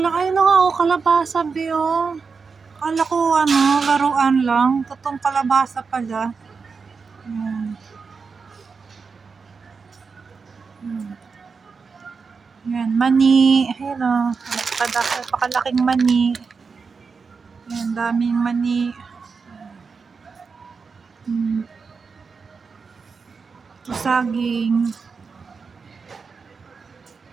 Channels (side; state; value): left; quieter; 5.1 dB